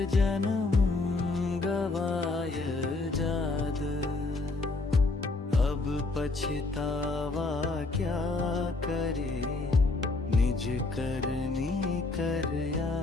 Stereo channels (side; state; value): right; quieter; 3.4 dB